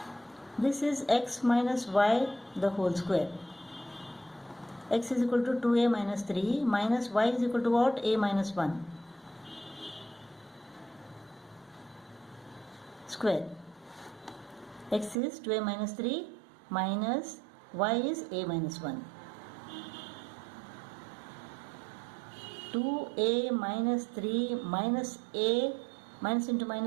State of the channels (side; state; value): left; drops out; at 15.2 s